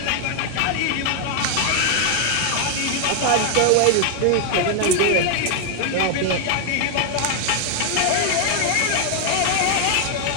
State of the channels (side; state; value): both; different; correlation 0.00